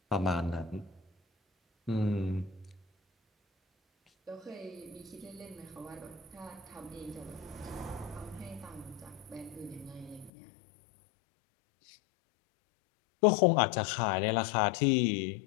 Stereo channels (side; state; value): right; drops out; at 10.3 s